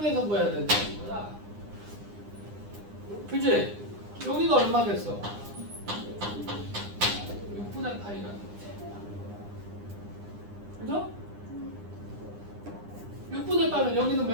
보여야 된다는 거야. 그치? 여기가 얼마겠어? 6분의 파이라는 거지. 그죠? 6분의 파이면 여기는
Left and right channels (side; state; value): left; late; 9.9 ms